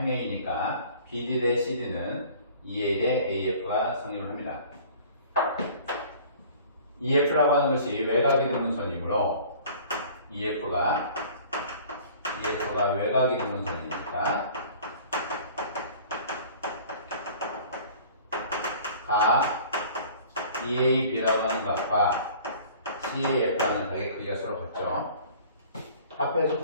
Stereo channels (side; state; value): both; inverted; correlation -0.48